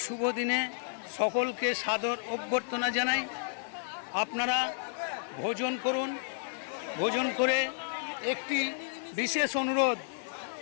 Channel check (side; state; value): right; silent; 57 dB below the other